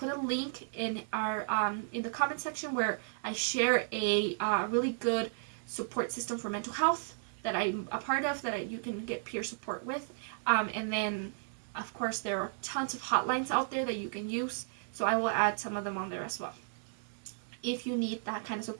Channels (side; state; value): left; silent; digital silence